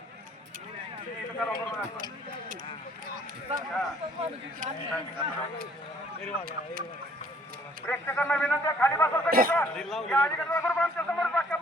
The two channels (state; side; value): normal; both; correlation 0.61